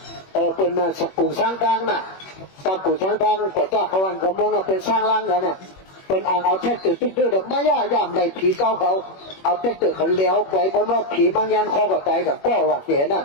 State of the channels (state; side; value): late; right; 21 ms